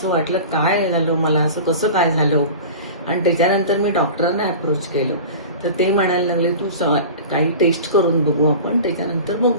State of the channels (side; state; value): both; inverted; correlation -0.35